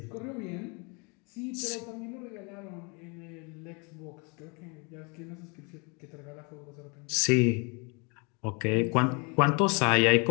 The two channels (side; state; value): right; quieter; 32.1 dB